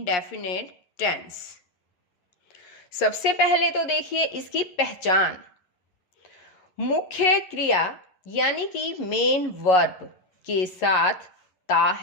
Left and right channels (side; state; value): right; late; 11 ms